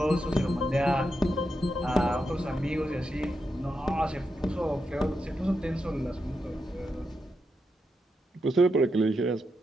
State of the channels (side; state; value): both; normal; correlation 0.85